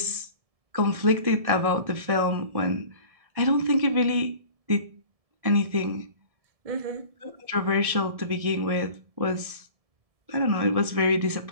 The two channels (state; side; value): late; left; 1.7 ms